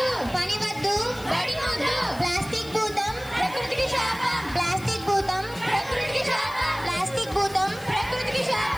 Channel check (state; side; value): noise; left; hiss, 21 dB below the sound